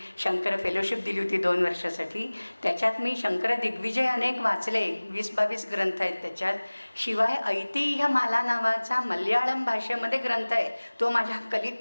शंकर फेलोशिप दिली होती 2 वर्षासाठी, त्याच्यात मी शंकर दिग्विजय अनेक वाचले, 20-22 ग्रंथ आहेत त्याच्यात. शिवाय ऐतिह्य माला नावाचा मल्याळम भाषेमध्ये ग्रंथ आहे, तो माझ्या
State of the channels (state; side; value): inverted; both; correlation -1.00